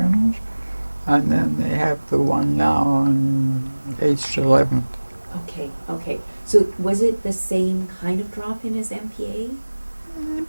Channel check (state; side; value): inverted; both; correlation -1.00